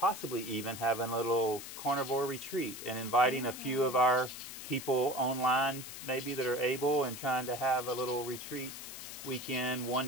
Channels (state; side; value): noise; left; hiss, 10 dB below the sound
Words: even having a little carnivore retreat and inviting a few of our people online maybe that are able, and trying to have a little retreat weekend one